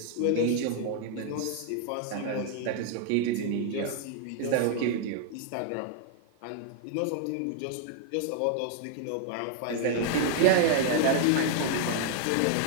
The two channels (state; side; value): different; both; correlation 0.00